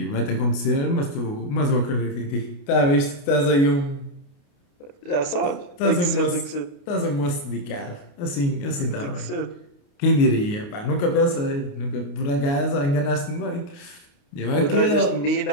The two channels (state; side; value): late; right; 29 ms